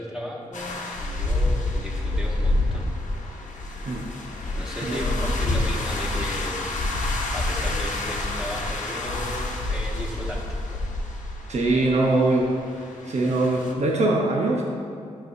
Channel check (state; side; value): normal; both; correlation 0.70